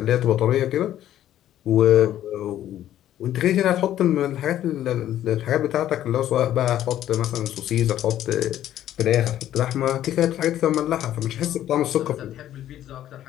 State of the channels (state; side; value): quieter; right; 12.1 dB